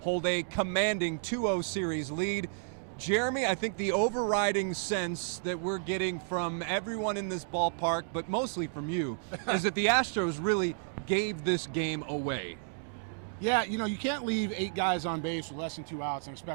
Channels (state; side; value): silent; left; digital silence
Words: hold a commanding 2-0 series lead. Jeremy, I think the overriding sense that we're getting from everyone in this ballpark, but mostly from you, is that the Astros really gave this game away. Yeah, you can't leave 8 guys on base with less than 2 outs and